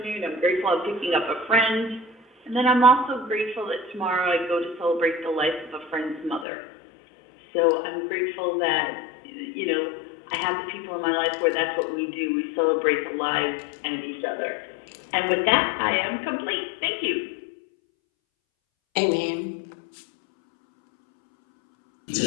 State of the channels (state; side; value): drops out; right; at 6.5 s